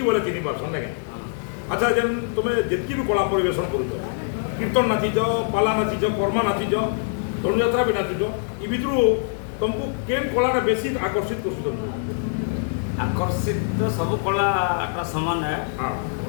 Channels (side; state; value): right; silent; digital silence